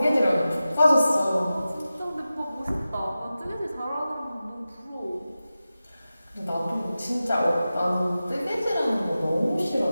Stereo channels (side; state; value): both; inverted; correlation -0.94